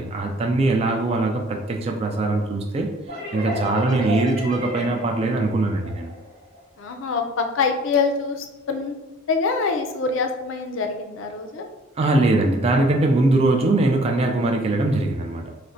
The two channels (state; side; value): normal; both; correlation 0.54